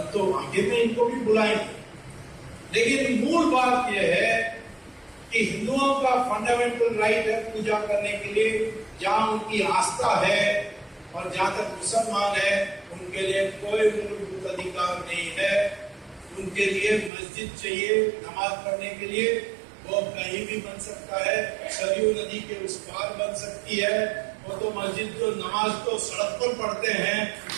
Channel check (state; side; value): drops out; left; at 17.1 s